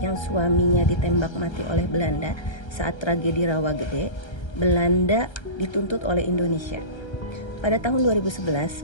suaminya ditembak mati oleh Belanda saat tragedi Rawagede, Belanda dituntut oleh Indonesia. Pada tahun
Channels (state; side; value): late; right; 1.3 ms